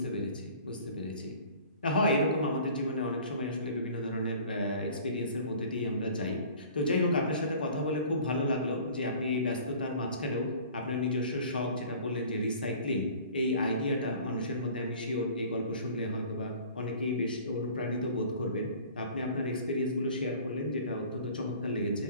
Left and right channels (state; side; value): inverted; both; correlation -0.47